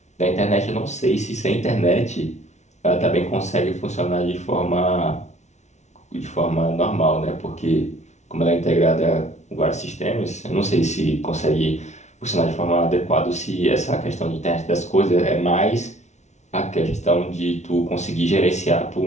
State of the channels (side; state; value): right; late; 0.33 ms